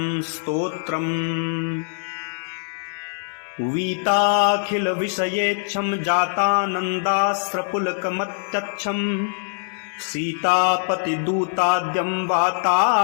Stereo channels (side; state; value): right; silent; digital silence